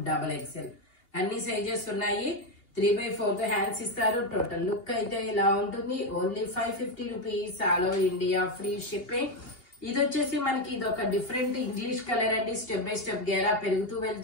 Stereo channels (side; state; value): right; late; 2.8 ms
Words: అన్ని సైజెస్ ఉన్నాయి. 3/4 హ్యాండ్స్ ఇస్తారు. టోటల్ లుక్ అయితే ఇలా ఉంటుంది. Only 550 rupees. All over India free shipping. ఇది వచ్చేసి మనకి ఇది ఒక డిఫరెంట్ ఇంగ్లీష్ కలర్ అండి. స్టెప్ బై స్టెప్ గేరా పెరుగుతూ